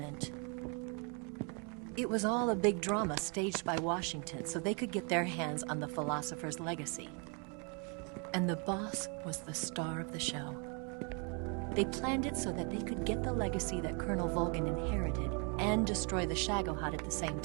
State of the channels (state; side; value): quieter; left; 36.0 dB